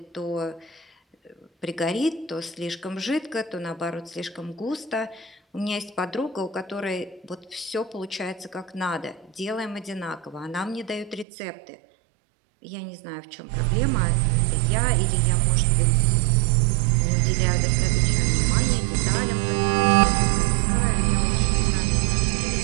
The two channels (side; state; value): left; drops out; at 11.2 s